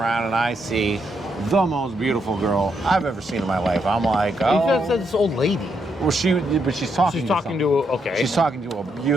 and I see the most beautiful girl I've ever seen in my life. I'm like, oh. You said this old lady. Well, she's talking. She's talking to okay. She's talking to a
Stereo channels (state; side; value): normal; both; correlation 0.78